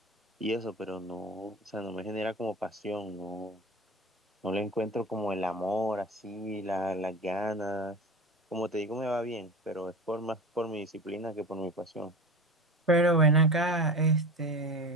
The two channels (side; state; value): both; normal; correlation 0.31